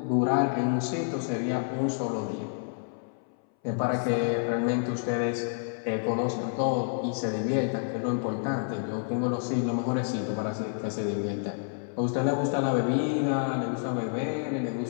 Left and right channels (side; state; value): right; silent; 59 dB below the other